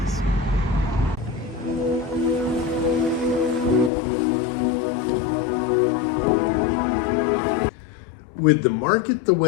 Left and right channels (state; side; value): drops out; right; at 3.9 s